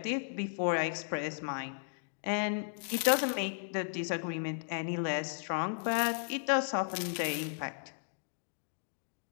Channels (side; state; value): right; silent; digital silence